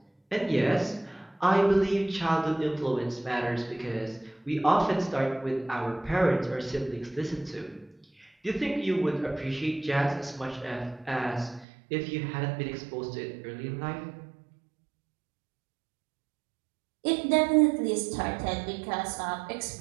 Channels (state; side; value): drops out; left; at 11.7 s